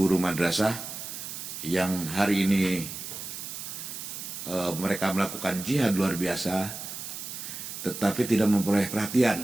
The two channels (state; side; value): noise; right; hiss, 8 dB below the sound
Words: madrasah yang hari ini mereka melakukan jihad luar biasa, tetapi tidak memperoleh